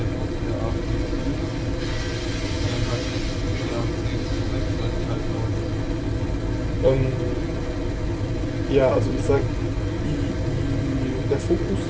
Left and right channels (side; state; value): both; identical; correlation 1.00